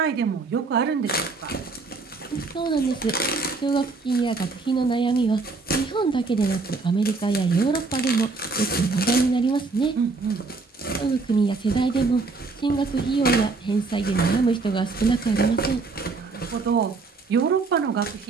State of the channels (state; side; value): quieter; left; 4.0 dB